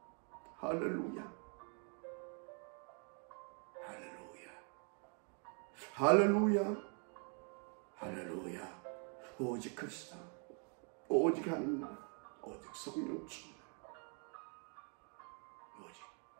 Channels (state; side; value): quieter; left; 39.8 dB